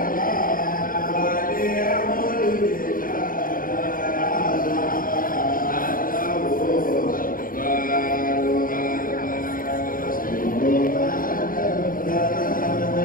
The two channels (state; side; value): late; right; 0.41 ms